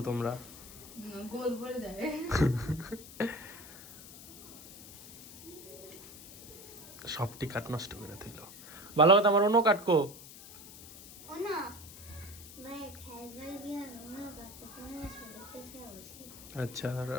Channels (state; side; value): noise; left; hiss, 16 dB below the sound